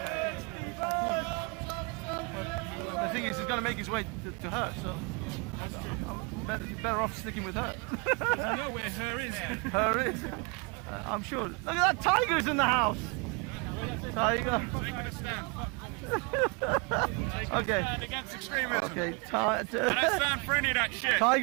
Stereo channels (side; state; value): left; quieter; 31.6 dB